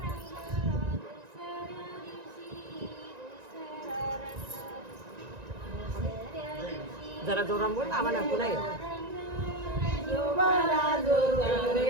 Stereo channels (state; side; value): late; left; 1.9 ms